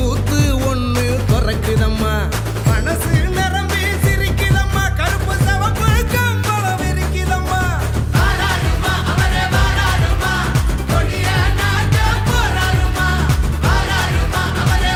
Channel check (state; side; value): identical; both; correlation 1.00